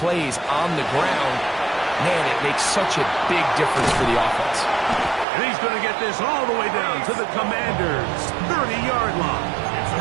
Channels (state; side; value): drops out; left; at 5.2 s